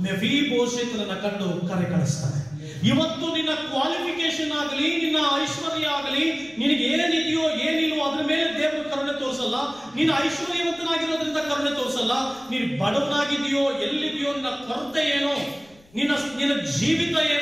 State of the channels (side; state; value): left; noise; rumble, 29 dB below the sound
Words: ಮೆಫೀಬೋಶೆತನನ್ನ ಕಂಡು ಕರೆ ಕಳಿಸ್ತಾನೆ. ಇವತ್ತು ನಿನ್ನ ಕ್ವಾಲಿಫಿಕೇಶನ್ ಆಗಲಿ, ನಿನ್ನ ಐಶ್ವರ್ಯ ಆಗಲಿ, ನಿನಗೆ ಏನಿದೆಯೋ ಏನಿಲ್ವೋ ಅದ್ರ ಮೇಲೆ ದೇವರು ಕರುಣೆ ತೋರಿಸಲ್ಲ. ನೀನು ಐಶ್ವರ್ಯವಂತನಾಗಿರೋದ್ರಿಂದ ಕರುಣೆ ತೋರಿಸಲ್ಲ. ನೀನು ಬಡವನಾಗಿದೆಯೋ, ಎಲ್ಲಿದೆಯೋ, ನಿನ್ನ ಕೊರತೆ ಏನೋ, ನಿನ್ನ ಜೀವಿತ